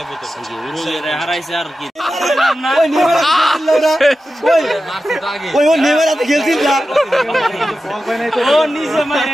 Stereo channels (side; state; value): both; normal; correlation 0.92